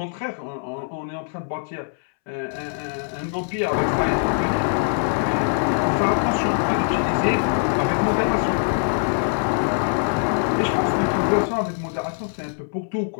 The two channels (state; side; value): silent; right; 64 dB below the other